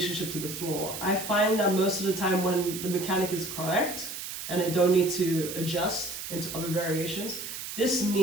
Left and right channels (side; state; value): right; noise; hiss, 8 dB below the sound